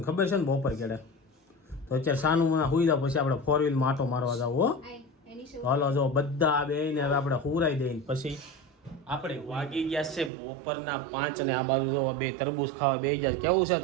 ખબર છે ને બપોર કેડે તો અત્યારે સાનું મના હુઈ જાવ પછી આપણે 4 વ્હીલમાં આટો મારવા જાવ હો હાલો જો બધા આ બેને હવે આપણે હુરાઈ દઈને પછી આપણે વાગી ગયા છે બપોરના 5 અને આ બાજુ જો બે તરબૂચ ખાવા બેસી ગયા કેવું છે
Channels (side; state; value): left; drops out; at 10.3 s